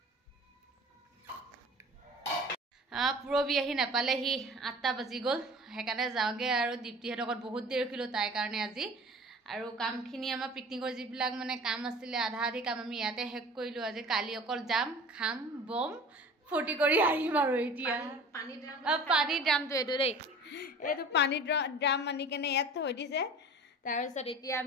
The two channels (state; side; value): normal; both; correlation 0.42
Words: পুৰবী আহি নাপালেহি 8টা বাজি গ'ল সেইকাৰণে যাওঁগে আৰু দীপ্তিহঁতৰ ঘৰত বহুত দেৰি ৰখিলোঁ তাইৰ কাৰণে আজি আৰু কামখিনি আমাৰ পিকনিকৰ যিবিলাক মানে কাম আছিলে আধা আধি কাম আমি ইয়াতে শেষ কৰিলোঁ আজি কালি অকল যাম খাম বম ফূৰ্তি কৰি আহিম আৰু এতিয়া পানী ড্ৰাম পানীৰ ড্ৰামটো এইটো দেই এইটো পানীৰ ড্ৰাম আনি কেনে ইয়াত থৈ দিছে তাৰপিছত এতিয়া